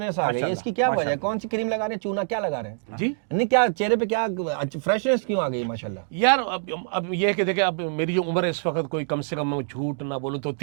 आ गई है, माशाल्लाह, इसकी क्या वजह है? माशाल्लाह। कौन सी क्रीम लगा रहे हैं, चूना क्या लगा रहे हैं? जी नहीं, क्या चेहरे पे क्या फ्रेशनेस क्यों आ गई माशाल्लाह? यार अब ये है कि देखिए, अब मेरी जो उम्र है इस वक्त, कोई कम से कम मैं झूठ ना बोलूं तो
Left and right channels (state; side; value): silent; left; digital silence